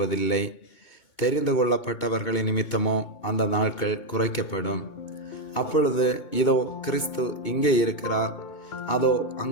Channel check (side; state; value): right; late; 2.2 ms